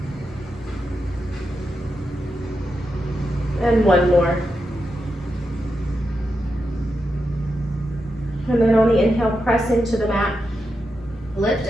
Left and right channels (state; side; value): normal; both; correlation 0.87